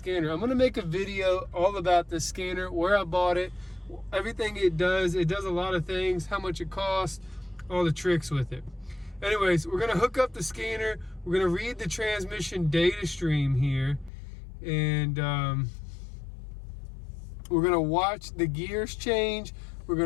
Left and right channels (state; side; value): drops out; right; at 14.1 s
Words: I'm gonna make a video all about the scanner, where I bought it, everything it does. It does a lot of things, how much it costs, all the tricks with it. Anyways, we're gonna hook up the scanner. We're gonna read the transmission data stream here. And we're gonna watch the gears change. We're